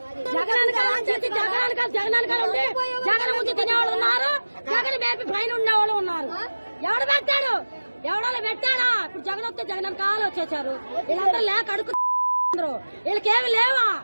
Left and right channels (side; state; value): both; inverted; correlation -1.00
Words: జగన్ కాలం చేసి జగన్ కాలం ఉండి జగన్ ముందు తినేవాళ్ళు ఉన్నారు, జగన్ మేపి పైన ఉండేవాళ్ళు ఉన్నారు. ఎవడు పెట్టాడు? ఎవడో పెట్టాడా? ఇప్పుడు జగన్ వస్తే జగన్ కాలు వచ్చేసారు. వీళ్ళందరూ లేక అడుగుతున్నారు. వీళ్ళకేమి లేవా?